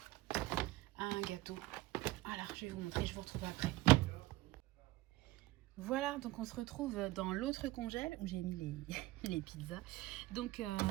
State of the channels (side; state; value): left; quieter; 18.4 dB